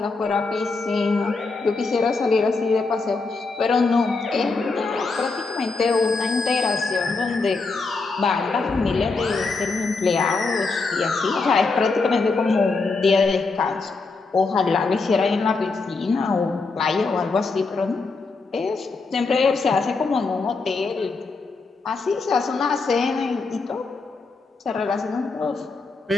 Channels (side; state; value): right; quieter; 4.0 dB